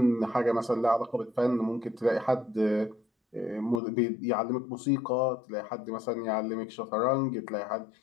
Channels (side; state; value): right; drops out; at 3.8 s